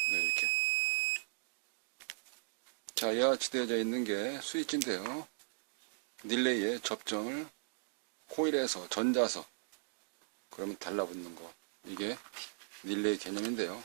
네, 이렇게. 자, 이와 같이 되어져 있는 게 스위치인데요. 릴레이에 접점을 코일에서 전자석, 그러면 달라붙는 거. 이게 릴레이 개념인데요.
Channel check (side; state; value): left; silent; digital silence